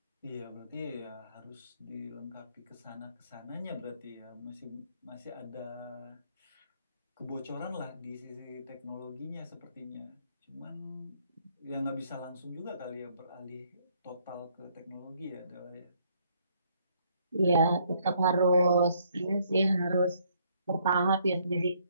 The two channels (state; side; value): inverted; both; correlation -0.67